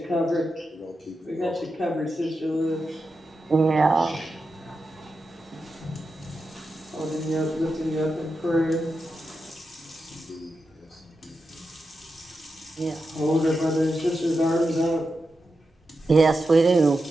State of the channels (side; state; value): both; normal; correlation 0.89